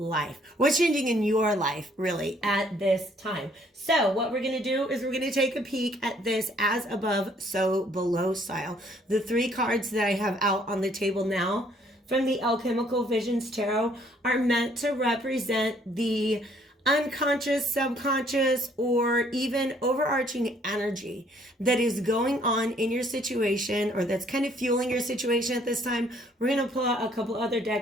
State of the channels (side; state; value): both; normal; correlation 0.63